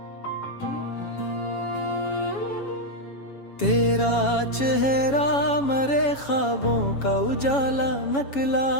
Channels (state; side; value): late; right; 7.2 ms